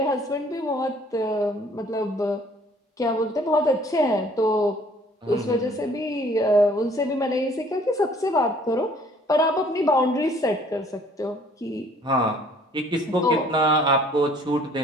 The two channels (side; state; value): both; normal; correlation 0.57